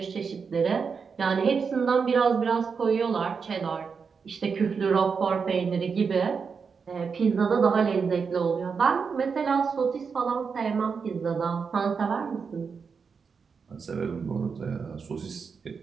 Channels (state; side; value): quieter; left; 5.7 dB